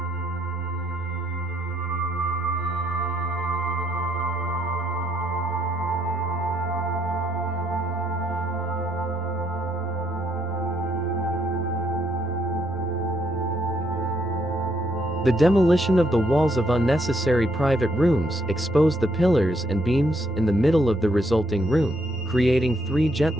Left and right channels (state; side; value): normal; both; correlation 0.73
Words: The demolition of the walls of unnecessary private rooms exposed the pillars and beams in the middle of the resulting room, creating 3